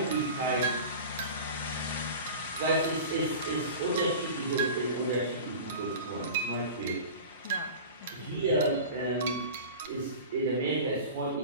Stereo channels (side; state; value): both; inverted; correlation -0.35